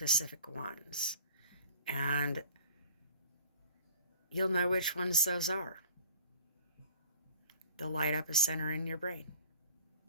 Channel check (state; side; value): inverted; both; correlation -0.46